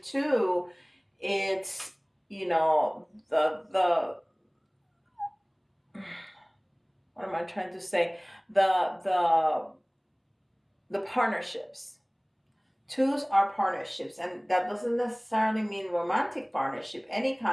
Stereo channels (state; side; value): identical; both; correlation 1.00